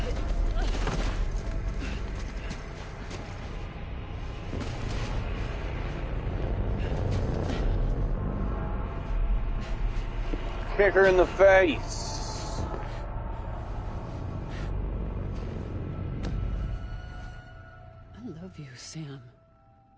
Kick her in the face. I love you, Sam.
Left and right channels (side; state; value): both; identical; correlation 1.00